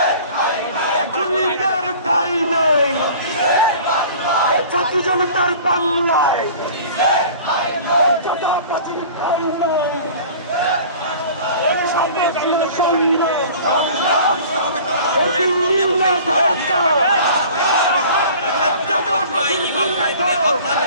এখনই তার ঠাই নাই জাতি জনতার বাংলায় ঠাই নাই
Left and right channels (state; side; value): inverted; both; correlation -0.44